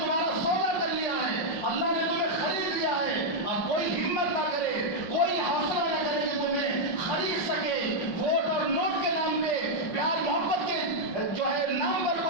سودا کر لیا ہے، اللہ نے تمہیں خرید لیا ہے. اب کوئی ہمت نہ کرے، کوئی حوصلہ نہ کرے کہ تمہیں خرید سکے. ووٹ اور نوٹ کے نام پہ، پیار محبت کے جو ہے نام پر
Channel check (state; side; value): late; right; 5.4 ms